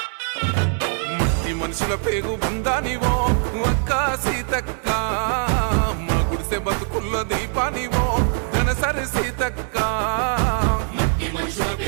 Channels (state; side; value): silent; left; 62 dB below the other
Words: మనుషుల పేగు బంధానివో అక్క సీతక్క మా గుడిసె బతుకుల్లో దీపానివో ధనసరి సీతక్క మనుషుల